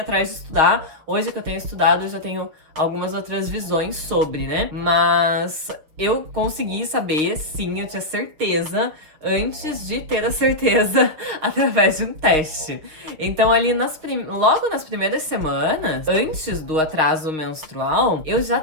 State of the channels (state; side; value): late; left; 6.7 ms